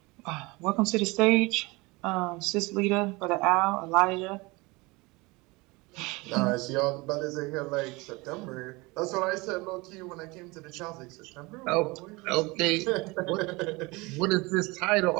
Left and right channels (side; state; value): left; quieter; 24.3 dB